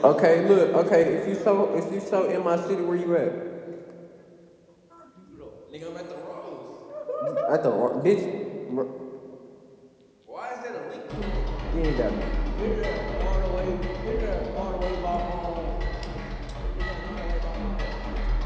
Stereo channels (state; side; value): identical; both; correlation 1.00